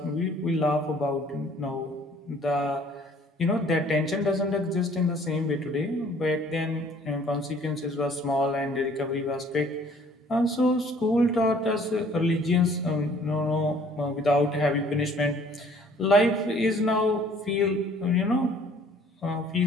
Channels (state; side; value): normal; both; correlation 0.56